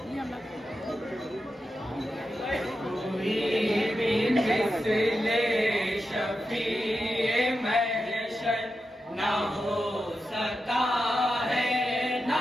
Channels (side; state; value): both; normal; correlation 0.89